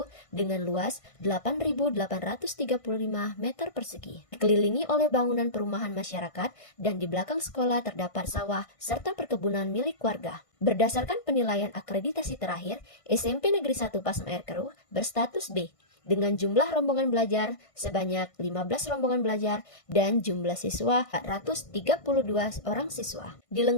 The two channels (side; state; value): right; late; 1.5 ms